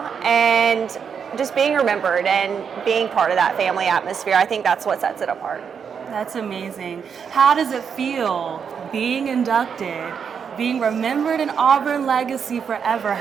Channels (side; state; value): left; quieter; 6.9 dB